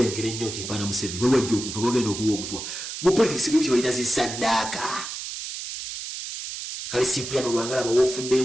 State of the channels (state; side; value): noise; right; hiss, 7 dB below the sound